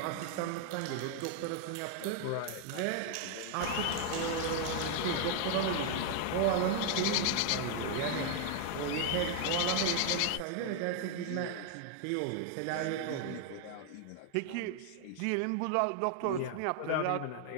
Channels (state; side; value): different; both; correlation 0.00